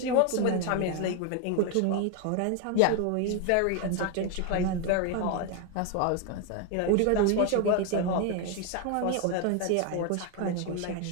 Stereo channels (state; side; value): different; both; correlation 0.01